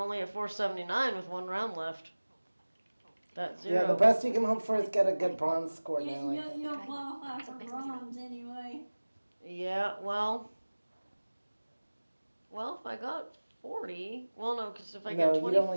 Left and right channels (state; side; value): inverted; both; correlation -1.00